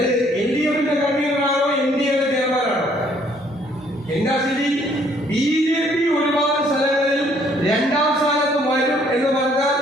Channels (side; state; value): both; normal; correlation 0.64